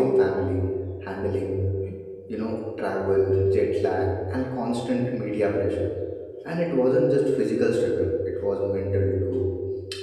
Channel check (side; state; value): both; identical; correlation 1.00